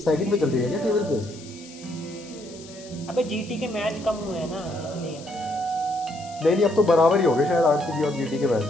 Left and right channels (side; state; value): left; noise; hiss, 19 dB below the sound